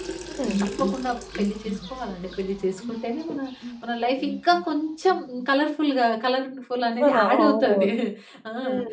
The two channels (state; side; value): identical; both; correlation 1.00